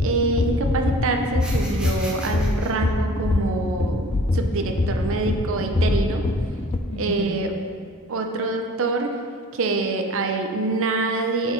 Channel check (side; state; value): both; normal; correlation 0.46